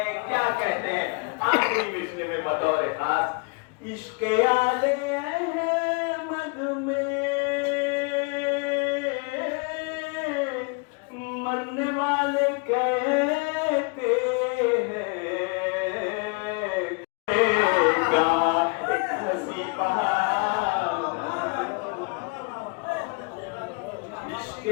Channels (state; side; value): quieter; right; 33.2 dB